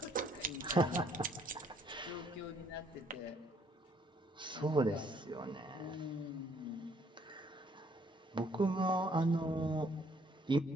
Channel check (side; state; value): both; normal; correlation 0.65